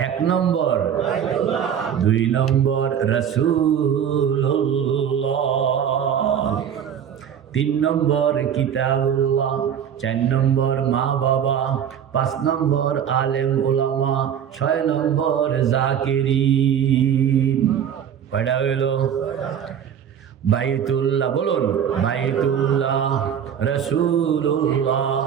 এক নম্বর, দুই নম্বর রাসূলুল্লাহ, তিন নম্বর কিতাবুল্লাহ, চার নম্বর মা বাবা, পাঁচ নম্বর আলেম ওলামা, ছয় নম্বর জাকিরিন। কয়টা হইল? বাইতুল্লাহ, বলুন বাইতুল্লাহ, রাসূলুল্লাহ,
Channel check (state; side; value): quieter; left; 8.7 dB